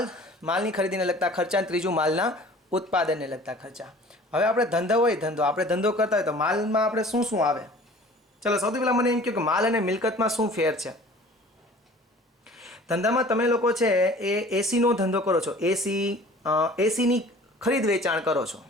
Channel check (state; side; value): normal; both; correlation 0.47